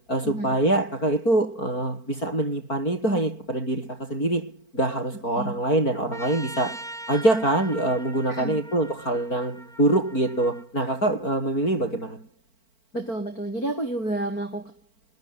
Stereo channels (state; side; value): late; right; 4.4 ms